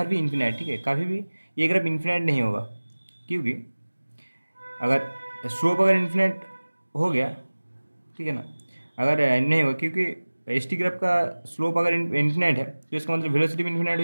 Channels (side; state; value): both; inverted; correlation -1.00